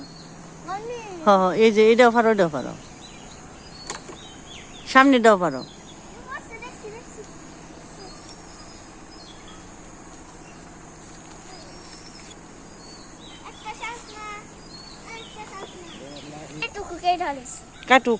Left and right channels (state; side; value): identical; both; correlation 1.00